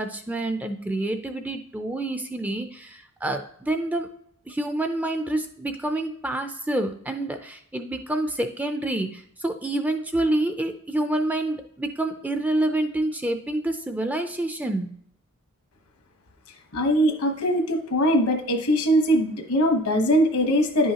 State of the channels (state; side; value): normal; both; correlation 0.58